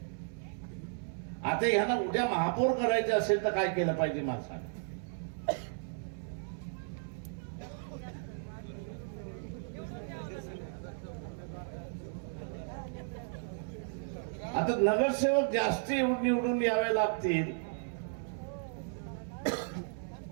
आता ह्यांना उद्या महापौर करायचे असेल तर काय केलं पाहिजे मला सांग. आता नगरसेवक जास्त निवडून यावे लागतील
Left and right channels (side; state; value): left; silent; 55 dB below the other